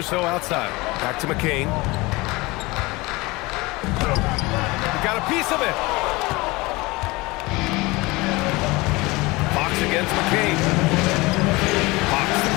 outside. Back to McCain. He got a piece of it. Fox against McCain. Fox the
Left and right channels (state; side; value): quieter; right; 22.7 dB